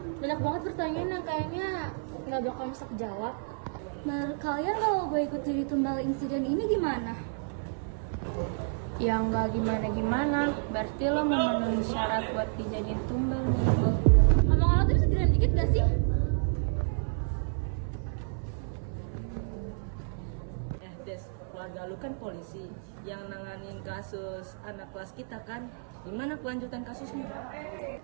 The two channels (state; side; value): silent; left; 58 dB below the other